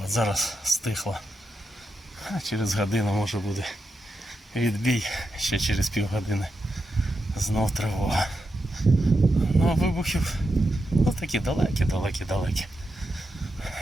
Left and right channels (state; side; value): normal; both; correlation 0.86